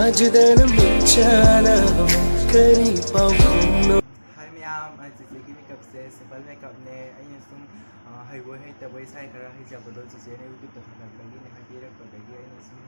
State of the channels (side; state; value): both; inverted; correlation -1.00